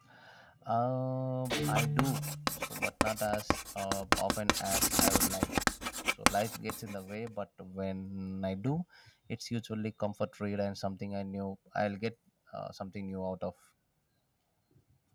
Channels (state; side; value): identical; both; correlation 1.00